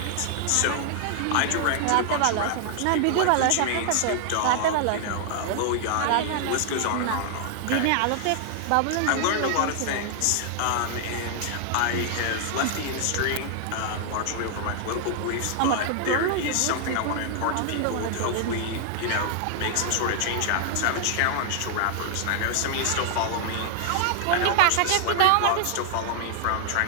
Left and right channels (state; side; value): different; both; correlation 0.00